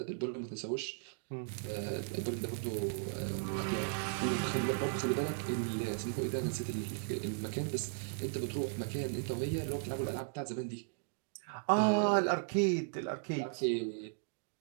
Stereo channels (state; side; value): silent; left; digital silence